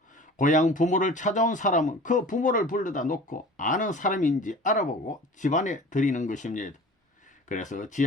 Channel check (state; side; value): normal; both; correlation 0.42